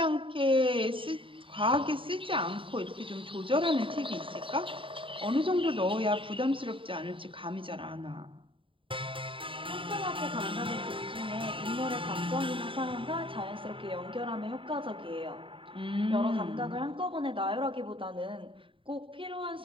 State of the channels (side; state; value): left; late; 0.25 ms